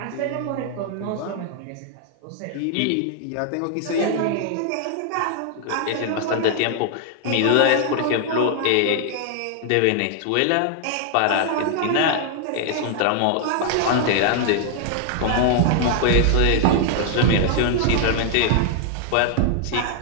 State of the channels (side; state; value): both; different; correlation 0.00